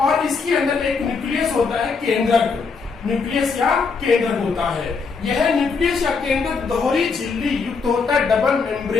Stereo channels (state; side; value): quieter; right; 5.0 dB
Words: इसके अंदर एक न्यूक्लियस होता है, केंद्रक। न्यूक्लियस या केंद्रक होता है। यह न्यूक्लियस या केंद्रक दोहरी झिल्ली युक्त होता है, डबल